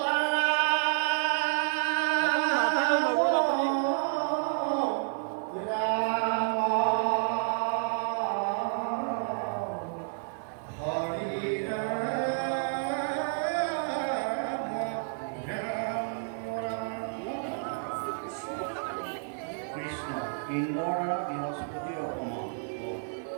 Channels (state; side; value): silent; left; digital silence